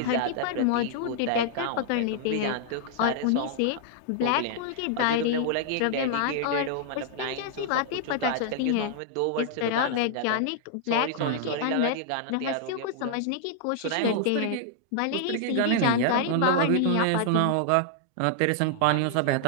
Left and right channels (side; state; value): both; different; correlation -0.01